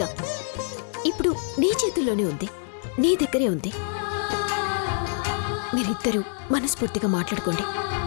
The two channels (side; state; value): right; silent; digital silence